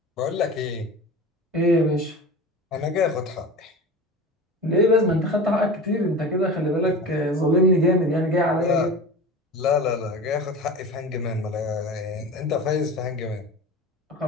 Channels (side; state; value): both; normal; correlation 0.32